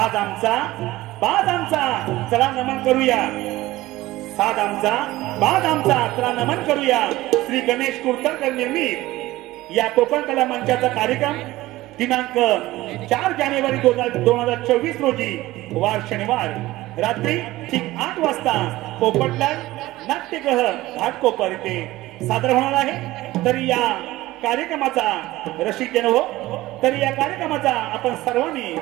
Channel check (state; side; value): quieter; left; 17.6 dB